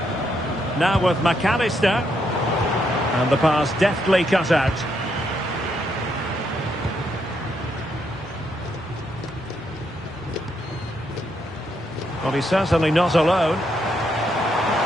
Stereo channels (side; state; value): both; normal; correlation 0.77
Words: Now with McAllister. And the pass deftly cut out. Well, he's certainly not alone. He's